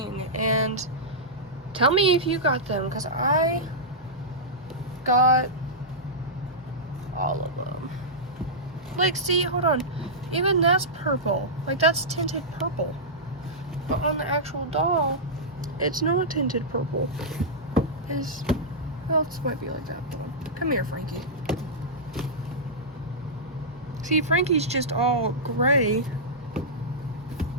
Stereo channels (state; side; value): normal; both; correlation -0.12